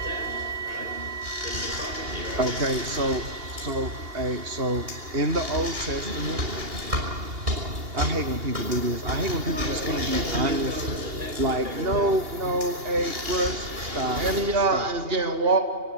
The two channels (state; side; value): late; left; 2.8 ms